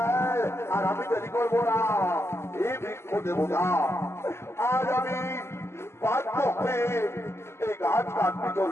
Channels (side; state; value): right; late; 0.12 ms